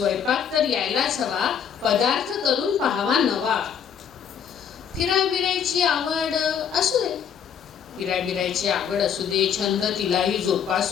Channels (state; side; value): quieter; right; 8.0 dB